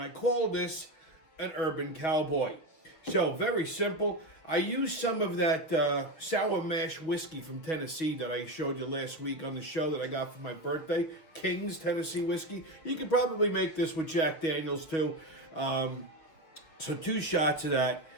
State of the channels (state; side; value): late; right; 6.5 ms